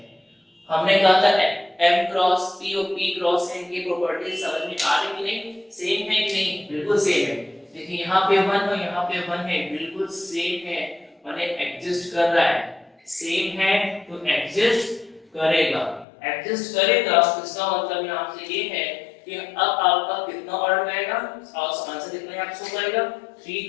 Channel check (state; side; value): drops out; right; at 16.1 s